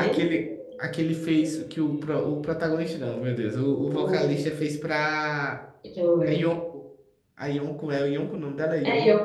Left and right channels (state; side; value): identical; both; correlation 1.00